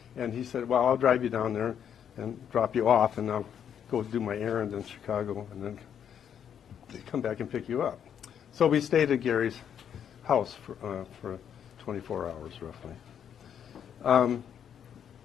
and he said, "Well, I'll drive you down there and drop you off, and I'll go do my errand in Chicago, and then come back and pick you up." So we stayed at Gary's house for 24 hours roughly.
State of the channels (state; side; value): quieter; right; 8.7 dB